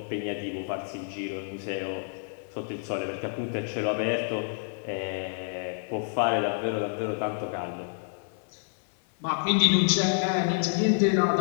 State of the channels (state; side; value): silent; right; digital silence